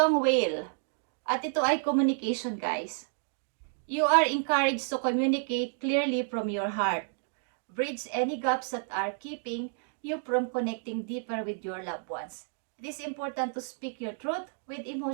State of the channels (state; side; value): silent; left; digital silence